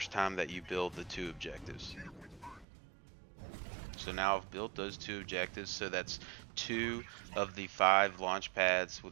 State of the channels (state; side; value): drops out; left; at 2.7 s